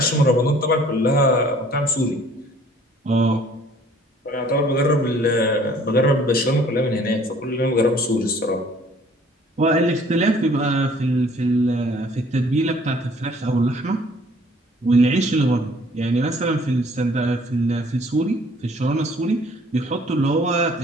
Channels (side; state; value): both; normal; correlation 0.56